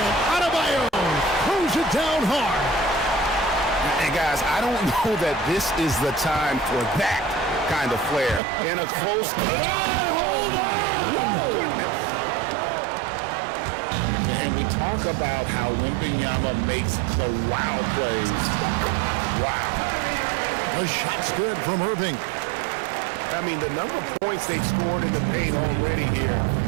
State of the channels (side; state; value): left; drops out; at 8.4 s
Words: Adebayo throws it down hard. And guys, I don't know that this is the time for that kind of flair in a close game. Hold on! And we talk about how Wembanyama makes the wow plays. Wow. The shot's good from Irving. I mean, the number of points they've scored in the paint already here